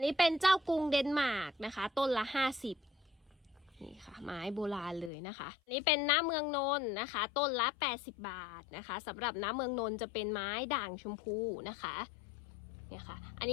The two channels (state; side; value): drops out; right; at 5.1 s